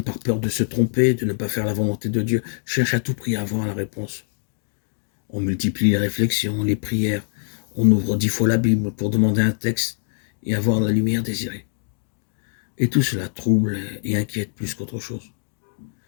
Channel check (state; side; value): silent; right; digital silence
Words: par peur de se tromper, de ne pas faire la volonté de Dieu, cherchent à tout prix à avoir la réponse. On multiplie les réflexions, les prières, on ouvre 10 fois la Bible pour demander un texte et avoir la lumière désirée. Et tout cela trouble et inquiète plus qu'autre chose.